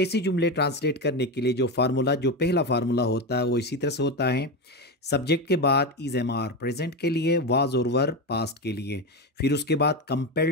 जुमले ट्रांसलेट करने के लिए जो पहला फार्मूला होता है वो इसी तरह से होता है। सब्जेक्ट के बाद इज एम आर प्रेजेंट के लिए, वाज और वर पास्ट के लिए, फिर उसके बाद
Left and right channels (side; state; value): both; normal; correlation 0.16